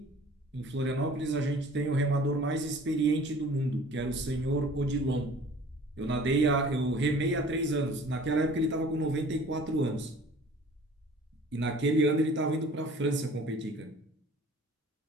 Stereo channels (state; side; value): normal; both; correlation 0.48